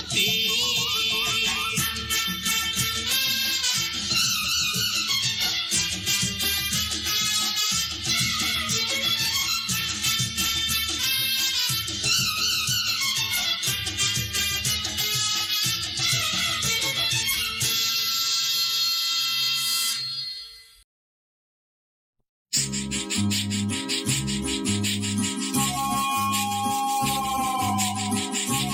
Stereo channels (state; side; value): identical; both; correlation 1.00